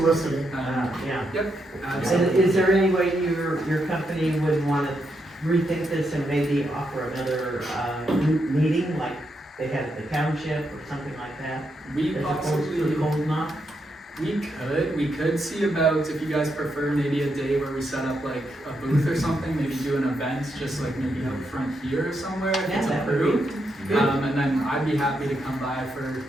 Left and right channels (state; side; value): normal; both; correlation 0.81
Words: Yeah. Yep, And absolutely. is there any way your company would wanna rethink this and maybe offer another, meeting, like they had at the township or something like that? We As opposed possibly, to a cold knock? we could see about, if you guys prefer, maybe a day where we set up like a booth or something, maybe do an event, just like maybe out front here or somewhere, if Yeah, it's that would be approved. good. And then I'd be happy to come by for